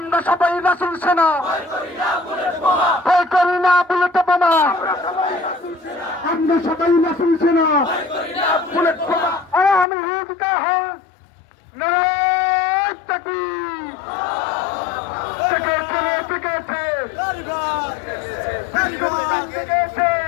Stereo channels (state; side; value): drops out; right; at 9.9 s